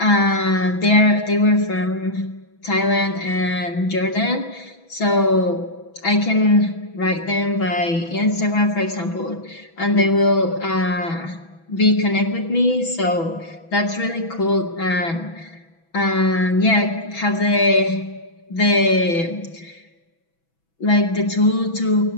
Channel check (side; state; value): right; late; 6.1 ms